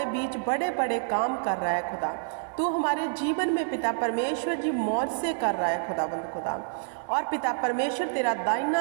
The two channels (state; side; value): silent; left; digital silence